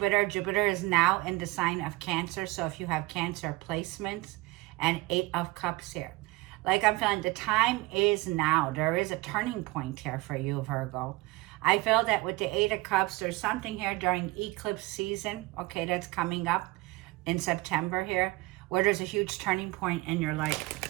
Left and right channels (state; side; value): quieter; left; 21.8 dB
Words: is now in the sign of Cancer. So if you have Cancer placements, and 8 of Cups here. Like I'm feeling the time is now. There is a turning point here for you, Virgo. I feel that with the 8 of Cups, there's something here during eclipse season, okay, that's coming up in September here, where there's a huge turning point in your life.